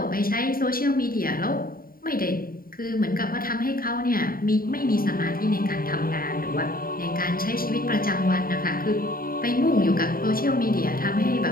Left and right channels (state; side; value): late; right; 0.42 ms